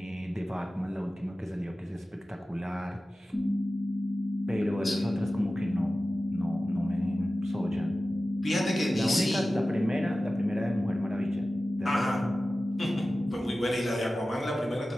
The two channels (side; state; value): both; normal; correlation 0.95